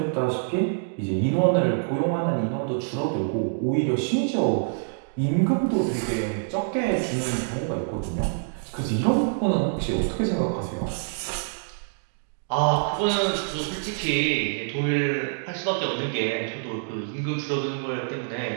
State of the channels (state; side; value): silent; left; digital silence